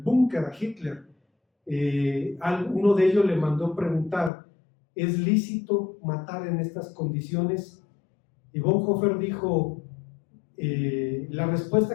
a Hitler. Uno de ellos le mandó preguntar: ¿es lícito matar en estas condiciones? Y Bonhoeffer dijo, la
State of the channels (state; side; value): drops out; right; at 4.3 s